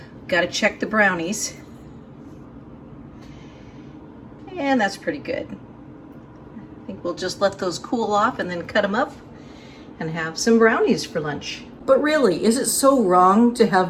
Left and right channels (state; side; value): identical; both; correlation 1.00